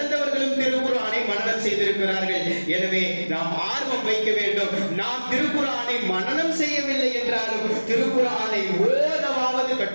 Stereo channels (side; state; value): both; inverted; correlation -1.00